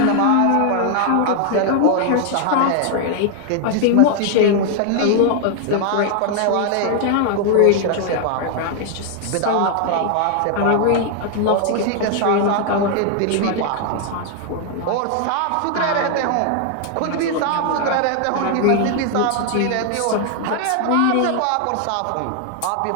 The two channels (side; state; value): both; different; correlation 0.00